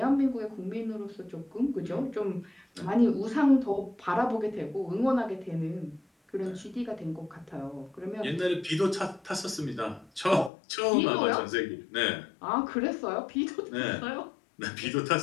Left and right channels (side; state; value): right; drops out; at 10.5 s